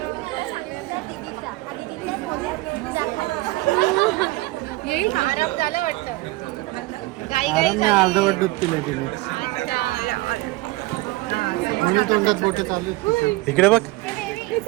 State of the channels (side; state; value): left; quieter; 20.2 dB